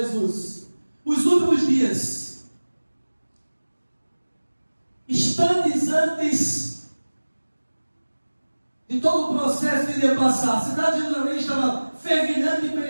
Os últimos dias. Instantes antes de todo o processo que iria passar. A cidade de Jerusalém estava fervilhando de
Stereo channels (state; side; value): inverted; both; correlation -1.00